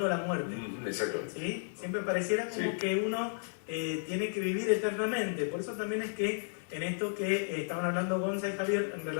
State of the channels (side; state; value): right; silent; digital silence